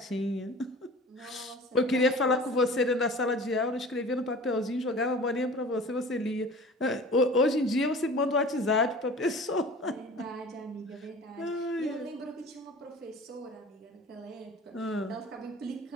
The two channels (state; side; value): normal; both; correlation 0.42